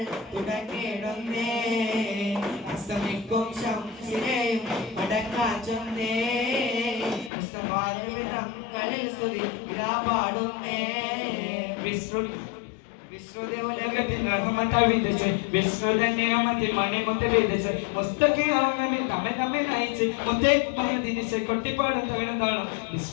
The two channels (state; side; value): drops out; right; at 7.3 s